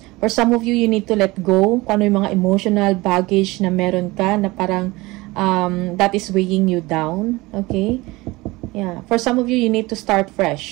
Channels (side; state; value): left; quieter; 21.5 dB